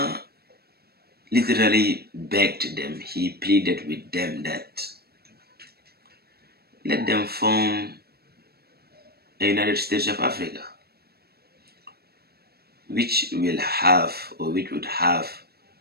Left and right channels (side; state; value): left; late; 0.46 ms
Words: literally begged them, he pleaded with them that let them form a United States of Africa, which would have